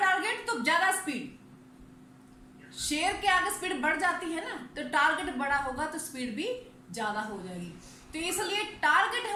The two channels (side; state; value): both; identical; correlation 1.00